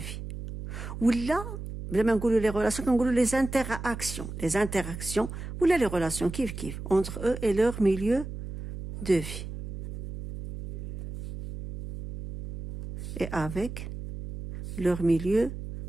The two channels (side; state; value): right; noise; hum, 8 dB below the sound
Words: ولا بلا ما نقولوا les relations كنقولوا les interactions ولا les relations كيف entre eux et leur milieu de vie et avec leur milieu